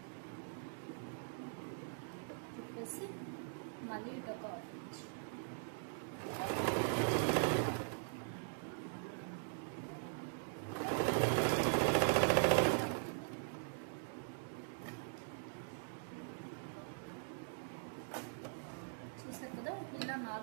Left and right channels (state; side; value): silent; left; digital silence